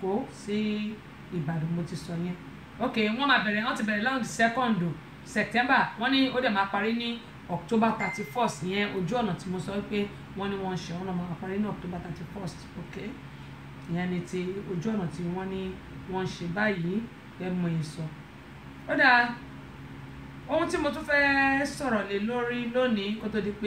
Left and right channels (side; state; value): both; identical; correlation 1.00